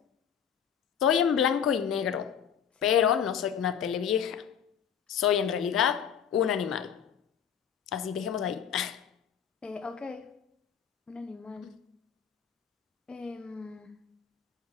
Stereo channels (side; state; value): right; quieter; 8.3 dB